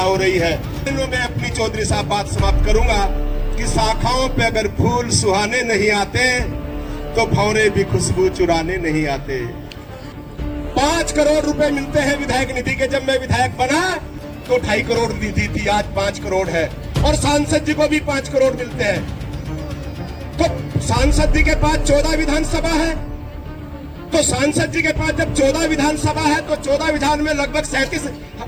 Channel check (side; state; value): both; identical; correlation 1.00